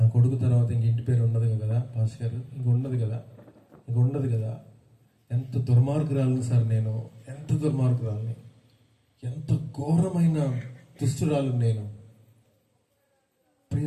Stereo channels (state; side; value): identical; both; correlation 1.00